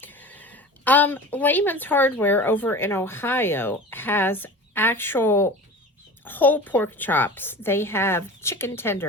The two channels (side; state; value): both; normal; correlation 0.36